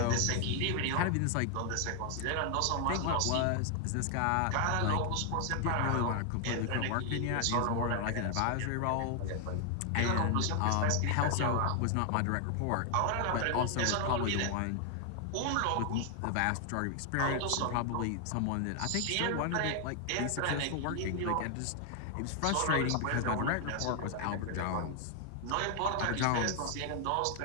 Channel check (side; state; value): both; different; correlation 0.00